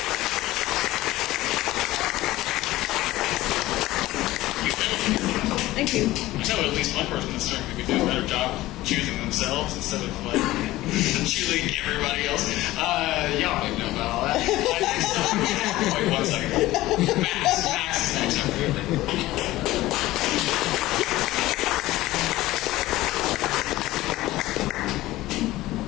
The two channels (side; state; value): right; quieter; 17.0 dB